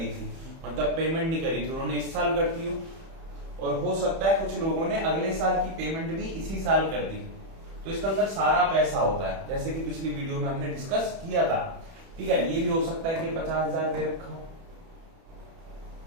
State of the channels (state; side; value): late; left; 31 ms